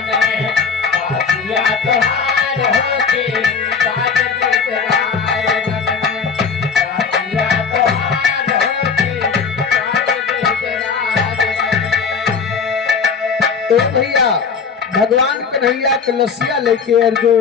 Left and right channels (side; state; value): right; quieter; 5.7 dB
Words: भगवान कन्हैया कलसिया लेके अर्जुन